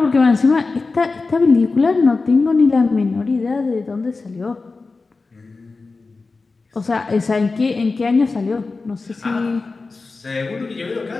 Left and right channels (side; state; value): right; quieter; 3.9 dB